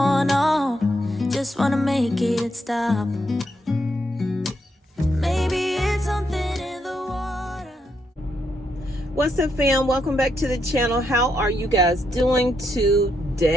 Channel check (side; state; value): both; normal; correlation 0.79